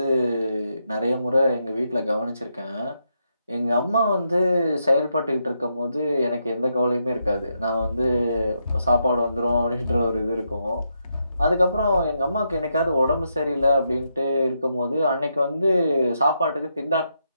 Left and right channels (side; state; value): both; inverted; correlation -0.81